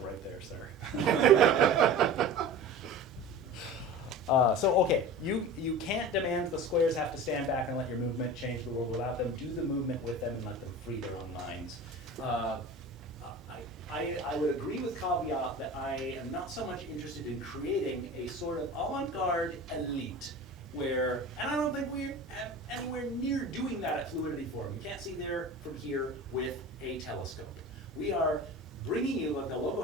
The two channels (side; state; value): both; normal; correlation 0.35